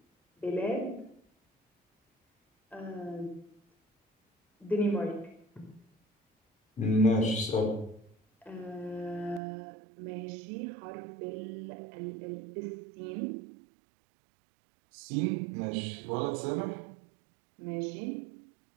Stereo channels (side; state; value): left; drops out; at 9.4 s